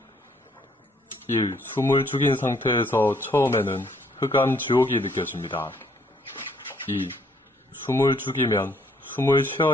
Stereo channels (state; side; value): normal; both; correlation 0.66